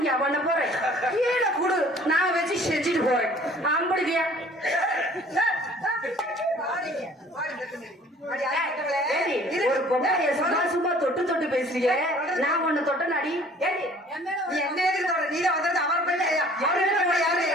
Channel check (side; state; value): both; normal; correlation 0.53